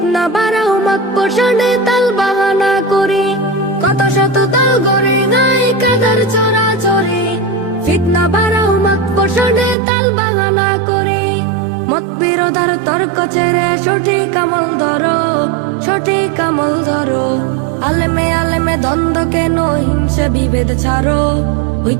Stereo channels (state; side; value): drops out; left; at 9.8 s